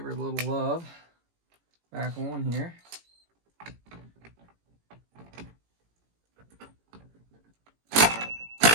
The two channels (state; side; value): late; left; 18 ms